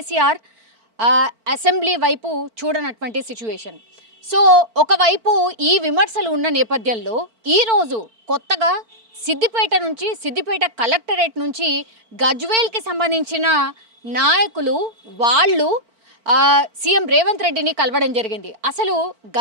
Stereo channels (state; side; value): late; left; 4.5 ms